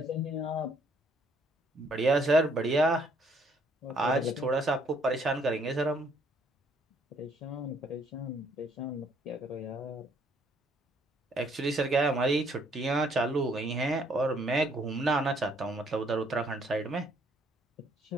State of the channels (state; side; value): normal; both; correlation 0.66